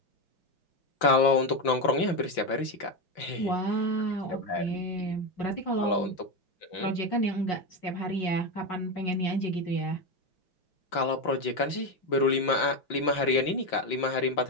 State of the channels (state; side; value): late; right; 5.8 ms